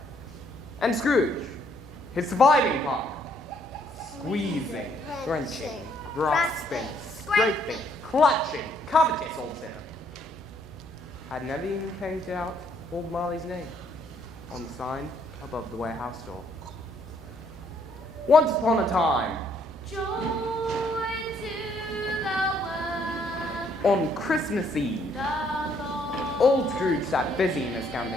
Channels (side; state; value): both; normal; correlation 0.68